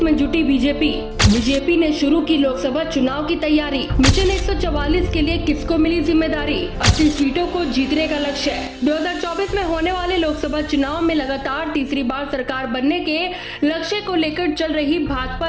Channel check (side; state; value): both; identical; correlation 1.00